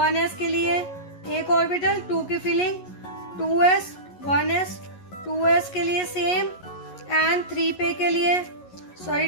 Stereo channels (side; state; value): right; late; 11 ms